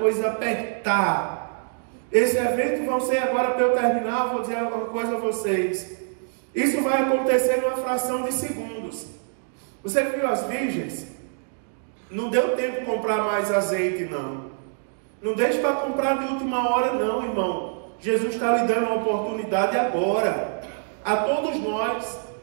apertar. Esse evento vão ser agora, para eu terminar, vou dizer alguma coisa a vocês. Isso vai acontecer numa fração de segundos. Você viu as virgens? Não deu tempo de comprar mais azeite, não. Não deixe para comprar de última hora não, irmão. Jesus está lhe dando uma oportunidade agora. A todos nós.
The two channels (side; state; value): left; silent; digital silence